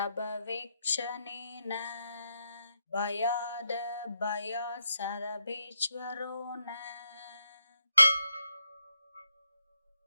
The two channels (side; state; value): both; inverted; correlation -0.81